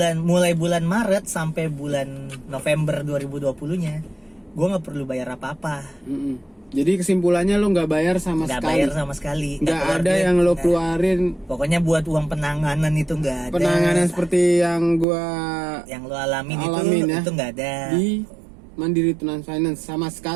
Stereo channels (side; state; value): left; drops out; at 15.1 s